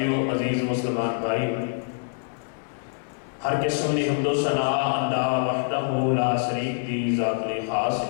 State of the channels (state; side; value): silent; right; 61 dB below the other